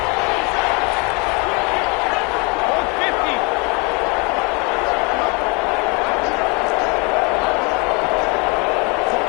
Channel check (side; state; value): right; quieter; 30.0 dB